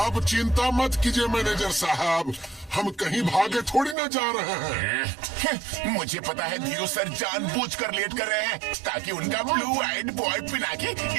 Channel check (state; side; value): drops out; left; at 4.0 s